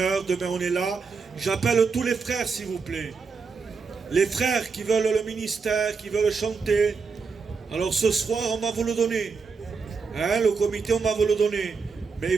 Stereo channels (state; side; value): quieter; left; 5.0 dB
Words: Demain on est là. J'appelle tous les frères s'il vous plaît. Les frères qui veulent le ministère, qui veulent chanter. Alors ce soir on va vous le donner. Le comité on va vous le donner. Mais